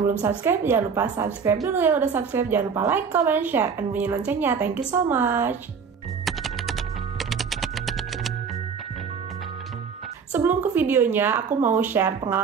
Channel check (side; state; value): left; quieter; 6.1 dB